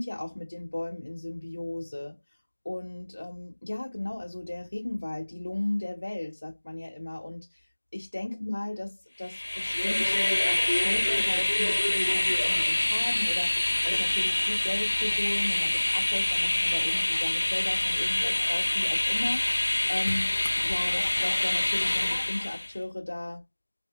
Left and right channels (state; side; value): inverted; both; correlation -1.00